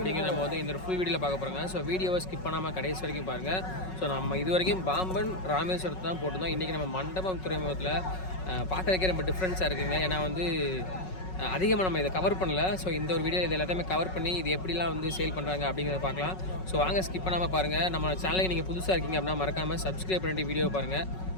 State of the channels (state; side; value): late; right; 5.4 ms